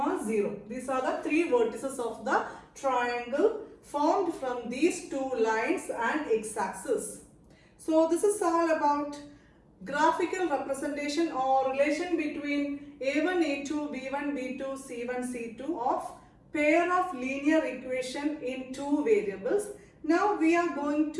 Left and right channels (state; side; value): identical; both; correlation 1.00